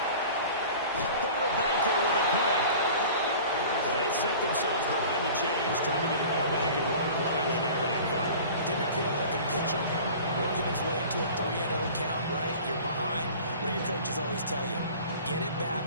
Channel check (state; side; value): inverted; both; correlation -0.41